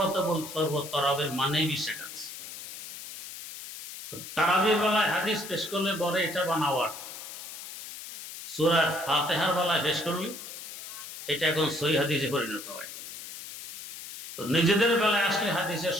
তো বলতে পারবো তারাবির মানেই 20 রাকাত। তারাবির বেলায় হাদিস পেশ করলে বলে এটা বানাওয়ার, সূরা ফাতিহার বেলায় পেশ করলে এটা এখন সহিহ হাদিসে পরিণত হয়। তো নিজেদের বেলায় আসলে হাদিসের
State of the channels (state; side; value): noise; left; hiss, 11 dB below the sound